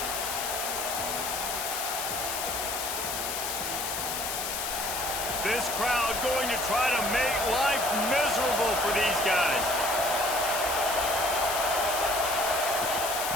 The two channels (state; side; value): noise; left; hiss, 3 dB below the sound